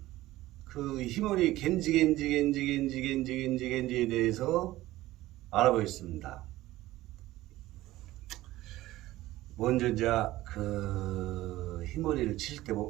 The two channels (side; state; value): left; quieter; 16.5 dB